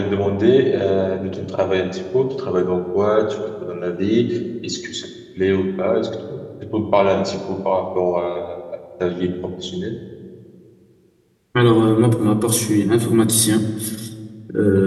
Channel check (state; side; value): identical; both; correlation 1.00